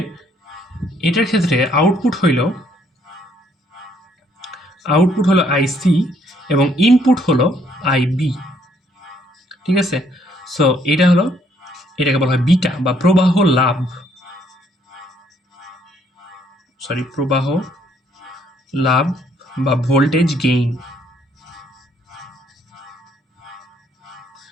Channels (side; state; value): both; normal; correlation 0.67